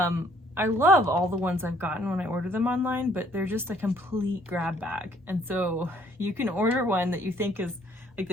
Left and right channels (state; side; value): normal; both; correlation 0.63